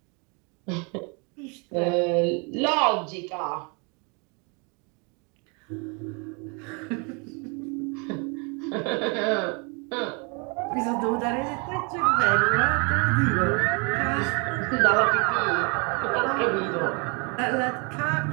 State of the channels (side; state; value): left; quieter; 32.7 dB